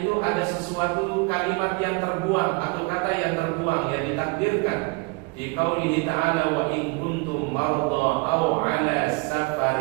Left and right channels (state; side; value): quieter; left; 28.8 dB